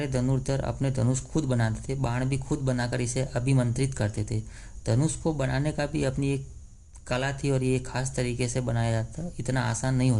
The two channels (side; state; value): both; identical; correlation 1.00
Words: धनुर्धर अपने धनुष खुद बनाते थे, बाण भी खुद बनाकर इसे अभिमंत्रित करते थे। धनुष को बनाने का भी अपनी एक कला थी और ये खास तरीके से बनाया जाता, इतना आसान नहीं